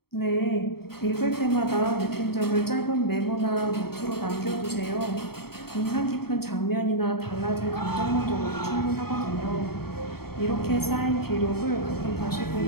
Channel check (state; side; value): late; right; 0.95 ms